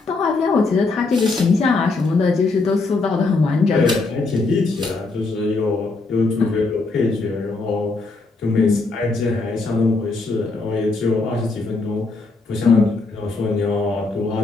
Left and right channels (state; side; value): quieter; right; 3.6 dB